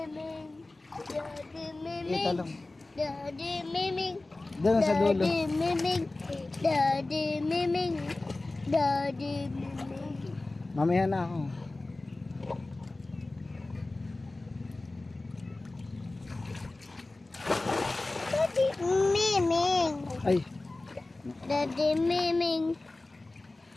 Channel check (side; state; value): right; quieter; 3.0 dB